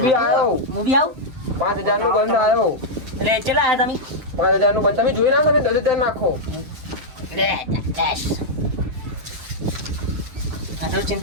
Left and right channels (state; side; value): late; left; 7.8 ms